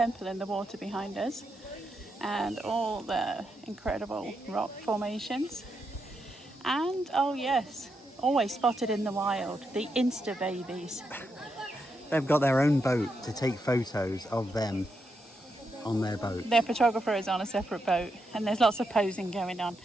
in the water behind us and all the incredible rock formations. And oh yes, always spotted in the wild, the Insta babies. They've got their own boat to take photos of them on their boat. Their photographer is on a separate boat and there's lots of posing going on.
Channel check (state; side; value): normal; both; correlation 0.83